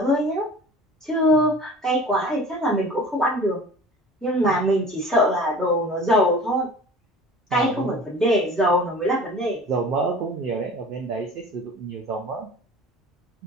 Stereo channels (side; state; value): both; normal; correlation 0.42